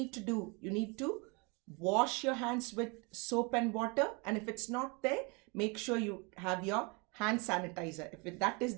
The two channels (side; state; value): left; quieter; 30.2 dB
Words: to do? You need to wash your hands with soap and water. And if it's not there, make sure you have your hand sanitizer. If that is